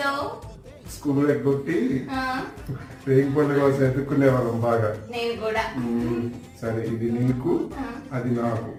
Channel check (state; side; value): identical; both; correlation 1.00